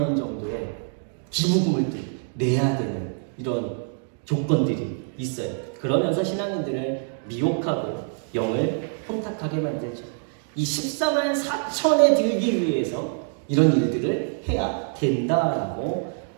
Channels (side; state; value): left; silent; 62 dB below the other